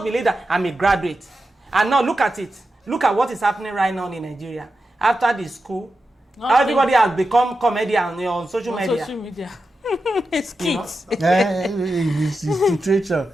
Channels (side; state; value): both; normal; correlation 0.90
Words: believe that I'm a graduate. And now look at it. Look at what is happening right now in Nigeria. After the school, everybody has become comedian on social media. It's kids. It's the situation.